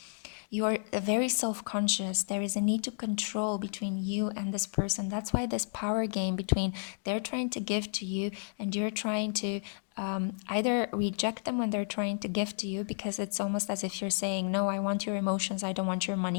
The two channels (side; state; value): right; silent; digital silence